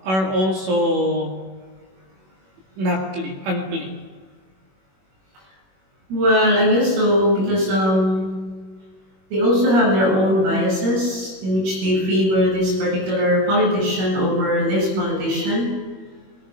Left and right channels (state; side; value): late; left; 21 ms